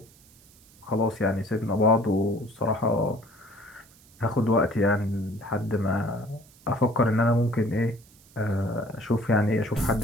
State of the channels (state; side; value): noise; right; hiss, 27 dB below the sound